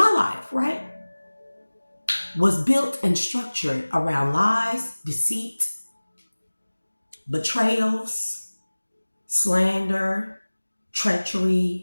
life, right, was built and structured around lies, deceit, betrayals, slander,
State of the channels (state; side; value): inverted; both; correlation -1.00